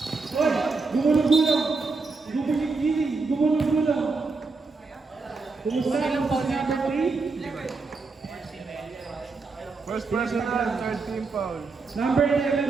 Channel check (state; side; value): quieter; left; 4.1 dB